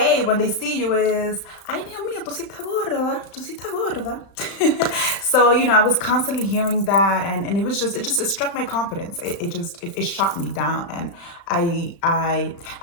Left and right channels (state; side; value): late; right; 35 ms